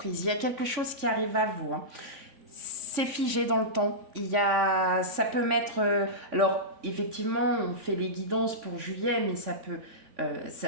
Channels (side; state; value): left; late; 3.5 ms